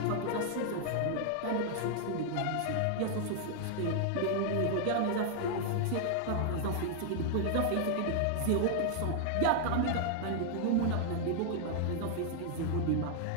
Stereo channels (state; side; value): different; both; correlation -0.01